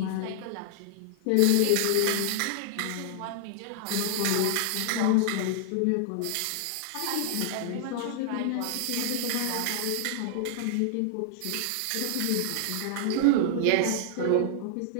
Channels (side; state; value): both; different; correlation -0.01